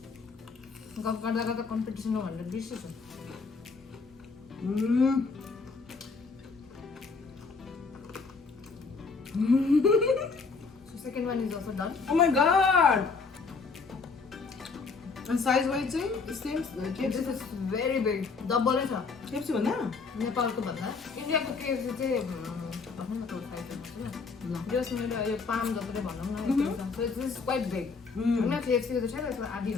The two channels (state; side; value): quieter; right; 4.6 dB